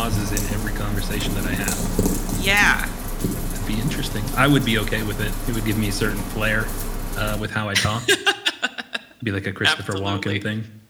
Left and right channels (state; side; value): identical; both; correlation 1.00